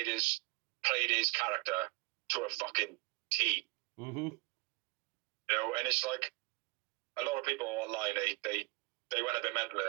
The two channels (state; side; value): quieter; left; 26.7 dB